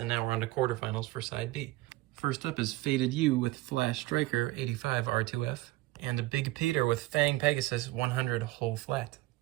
now we're on to quarterfinals for side B. First up is Faded You with Flash Striker 85 R2F, and a Big Peter with Fang Pegasus 100 whole flat.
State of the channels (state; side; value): quieter; left; 18.1 dB